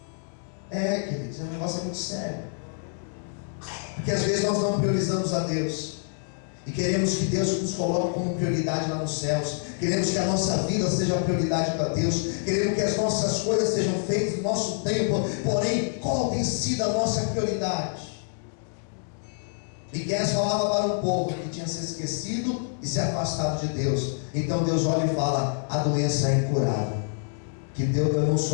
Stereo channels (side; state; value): right; silent; digital silence